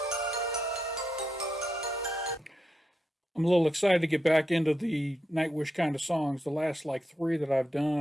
I'm a little excited to get back into the Nightwish kind of songs. The last like three that I've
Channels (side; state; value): both; normal; correlation 0.85